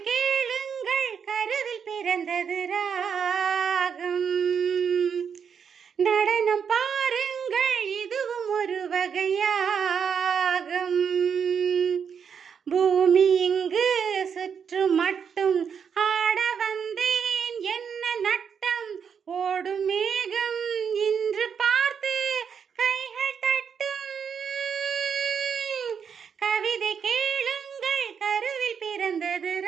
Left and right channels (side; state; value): left; quieter; 7.0 dB